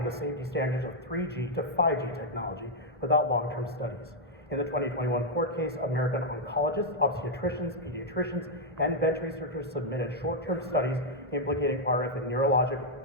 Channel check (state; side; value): normal; both; correlation -0.03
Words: the safety standards of 3G to 5G technology without long-term studies. In the 2021 court case, American oncologists, obstetricians, pediatricians, and bench researchers submitted short-term studies implicating RF in neurological